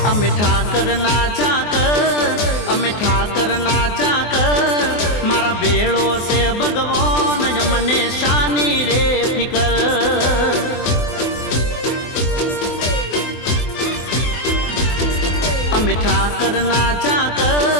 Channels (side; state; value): right; late; 24 ms